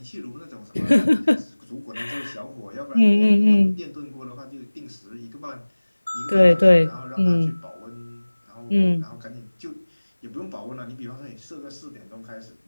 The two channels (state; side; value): inverted; both; correlation -1.00